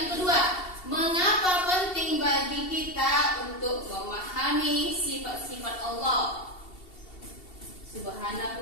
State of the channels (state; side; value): late; right; 2.7 ms